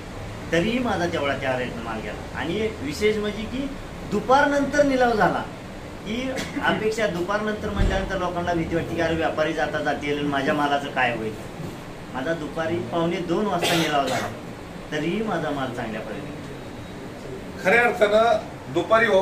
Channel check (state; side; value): identical; both; correlation 1.00